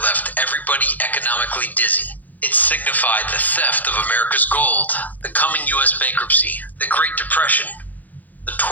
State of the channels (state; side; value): late; right; 0.082 ms